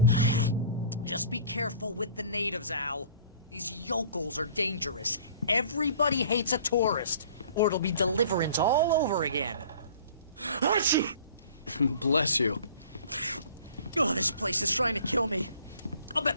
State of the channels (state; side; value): inverted; both; correlation -0.48